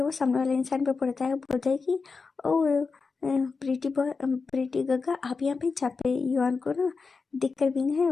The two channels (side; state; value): right; quieter; 4.6 dB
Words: वो सामने वाले इंसान पे पड़ता है, बोलता है कि ओ प्रीति गग्गा आप यहाँ पे। जहाँ पे युवान को ना दिखकर विंग है